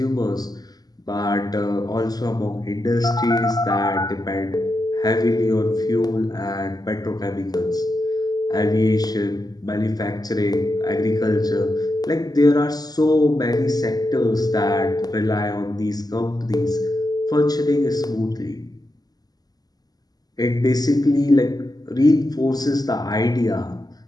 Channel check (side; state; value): right; late; 0.19 ms